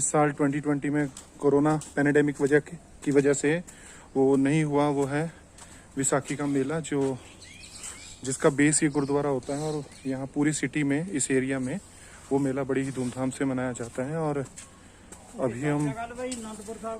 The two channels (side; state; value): both; identical; correlation 1.00